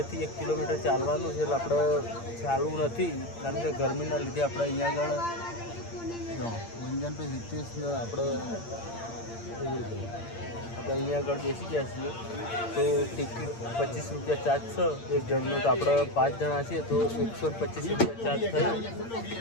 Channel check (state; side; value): late; right; 8.7 ms